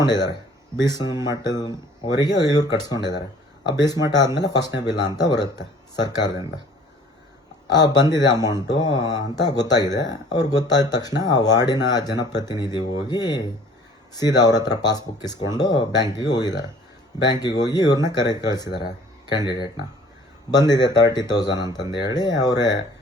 ಮಟ್ಟದವರೆಗೆ ಇವ್ರು ಕಟ್ಸ್ಕೊಂಡಿದ್ದಾರೆ. ಆ ಮಟ್ಟ ಆದಮೇಲೆ ಫಸ್ಟ್ನೇ ಬಿಲ್ ಅಂತ ಬರುತ್ತೆ ಸರ್ಕಾರದಿಂದ. ಬಂದಿದೆ ಅಮೌಂಟು ಅಂತ ಗೊತ್ತಾಗಿದೆ. ಅವ್ರಿಗೆ ಗೊತ್ತಾದ ತಕ್ಷಣ ಆ ವಾರ್ಡಿನ ಜನಪ್ರತಿನಿಧಿ ಹೋಗಿ ಸೀದಾ ಅವ್ರ ಹತ್ರ ಪಾಸ್ಬುಕ್ ಇಸ್ಕೊಂಡು ಬ್ಯಾಂಕಿಗೆ ಹೋಗಿದ್ದಾರೆ. ಬ್ಯಾಂಕಿಗೆ ಹೋಗಿ ಇವ್ರನ್ನ ಕಳಿಸಿದ್ದಾರೆ, ಕ್ಯಾಂಡಿಡೇಟ್ನ. ಬಂದಿದೆ 30,000 ಅಂತಂದು ಹೇಳಿ ಅವರೇ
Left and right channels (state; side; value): normal; both; correlation 0.52